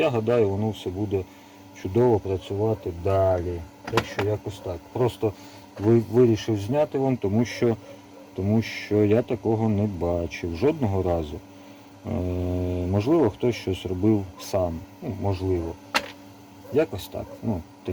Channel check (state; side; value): identical; both; correlation 1.00